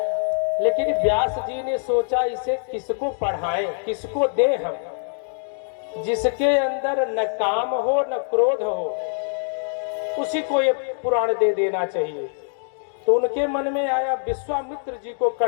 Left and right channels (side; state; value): right; silent; digital silence